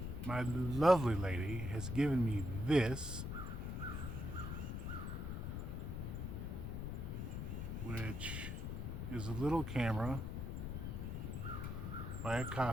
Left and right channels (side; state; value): left; noise; rumble, 4 dB below the sound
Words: my lovely lady has given me this, which is a little camera by